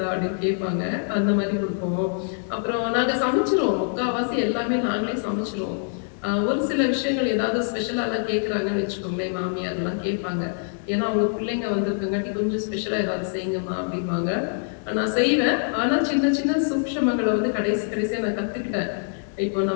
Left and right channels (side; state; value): right; silent; digital silence